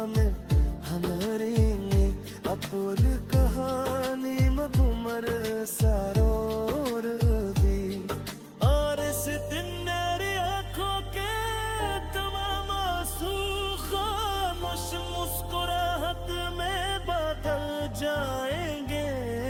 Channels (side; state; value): both; identical; correlation 1.00